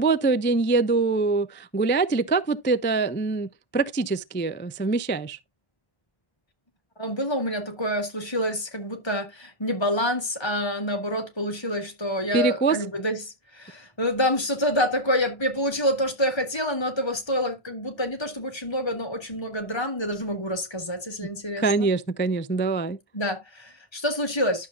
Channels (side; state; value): right; late; 1.3 ms